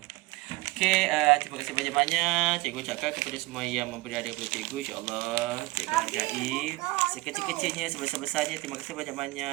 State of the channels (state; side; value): quieter; left; 21.8 dB